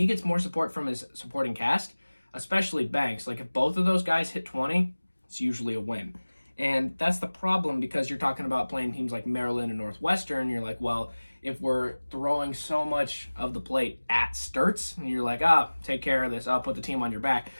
gets more support from his supporting cast, especially Banks, like if both of those guys hit 20, it's usually a win. And that's the problem, because you're talking about playing teams like Maryland and Northwestern. You're like, well, if we're throwing so much of the plate at Sturts, and you're like, take care of this, I'll put the team on your back.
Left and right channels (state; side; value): inverted; both; correlation -1.00